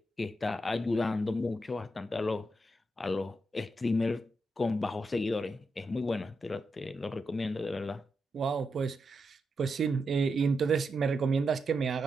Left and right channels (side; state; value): both; normal; correlation 0.85